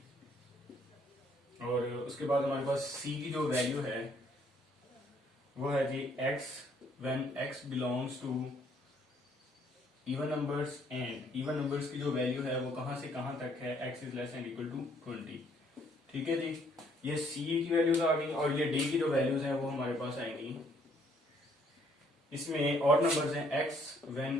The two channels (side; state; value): both; normal; correlation 0.66